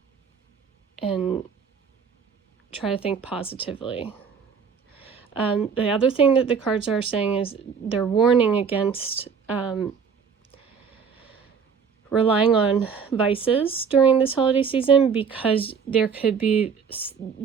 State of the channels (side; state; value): left; quieter; 6.3 dB